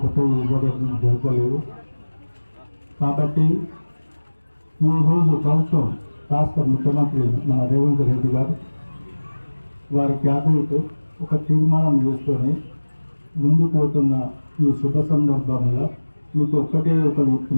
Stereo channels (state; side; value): inverted; both; correlation -1.00